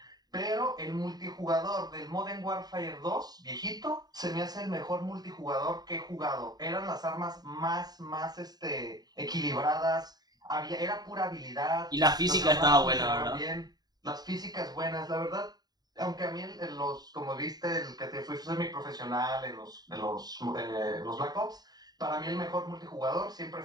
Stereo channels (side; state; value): left; late; 0.19 ms